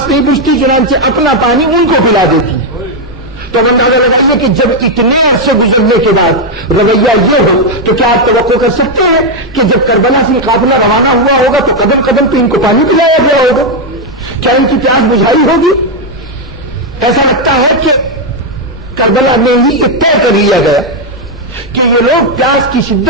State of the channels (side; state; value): both; normal; correlation 0.02